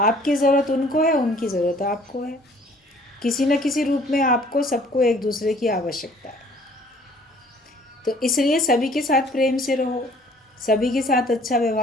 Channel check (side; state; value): both; normal; correlation 0.56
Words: ज़रूरत उनको है, उनकी ज़रूरत आपको है। किसी न किसी रूप में आपको सबको एक दूसरे की आवश्यकता है। तो इसलिए सभी के साथ प्रेम से रहो, सभी के साथ अच्छा